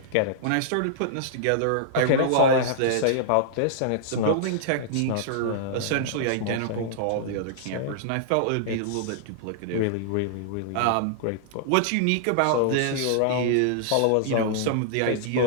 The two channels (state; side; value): different; both; correlation -0.01